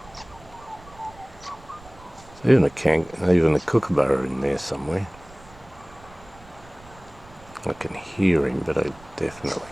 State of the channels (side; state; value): right; noise; rumble, 22 dB below the sound